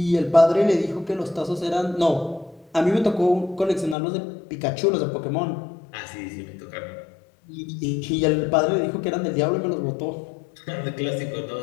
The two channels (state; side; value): drops out; right; at 4.0 s